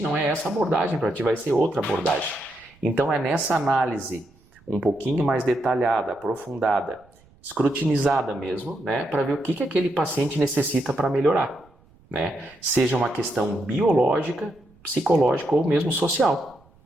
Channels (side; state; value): right; noise; rumble, 30 dB below the sound